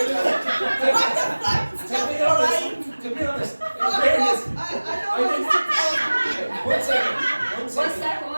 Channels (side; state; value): both; inverted; correlation -1.00